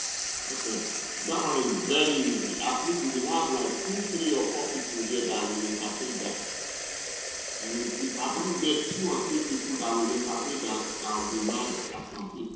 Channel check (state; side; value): identical; both; correlation 1.00